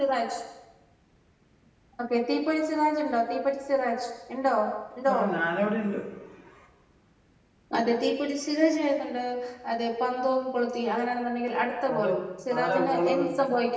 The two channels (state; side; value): identical; both; correlation 1.00